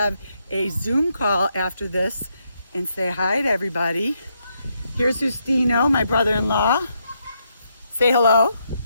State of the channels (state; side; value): inverted; both; correlation -0.78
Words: a Zoom call after this and say hi to everybody. Here's Justino, my brother-in-law. Say hello.